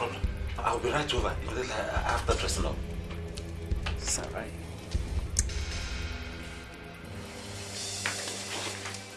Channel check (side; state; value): both; identical; correlation 1.00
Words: I'll be right over after dressing up. It's alright.